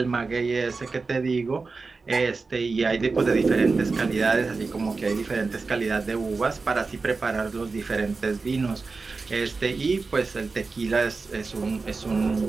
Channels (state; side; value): quieter; left; 4.2 dB